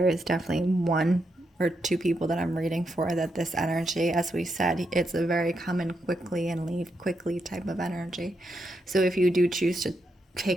is definitely 1 or 2 people that I'm reading for that this energy, as we said, it's a very come in quickly and leave quickly type of energy. So if you do choose to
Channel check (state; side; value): normal; both; correlation 0.82